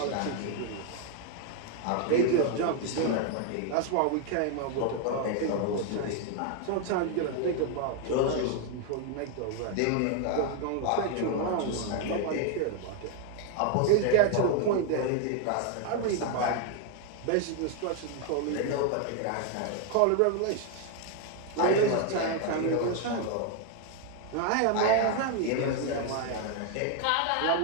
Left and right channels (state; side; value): different; both; correlation 0.00